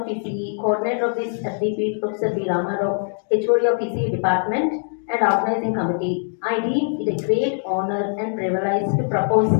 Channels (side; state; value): right; silent; digital silence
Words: ECE, coordinator of this FDP, Professor V. Ramarao, HOD of ECE Department, and organizing committee, I deem it a great honor and privilege to propose